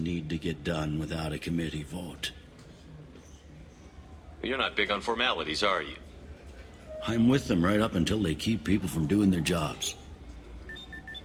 to get done without a committee vote. You're not big on formalities, are you? I'm with them right up until they keep people from doing their jobs.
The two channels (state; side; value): identical; both; correlation 1.00